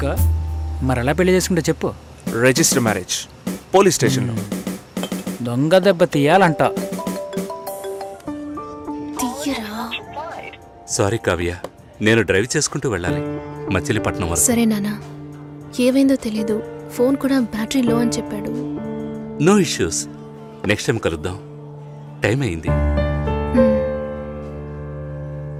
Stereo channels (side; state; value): both; identical; correlation 1.00